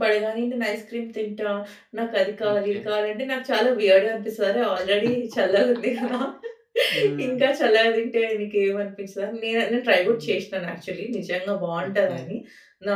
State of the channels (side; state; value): both; identical; correlation 1.00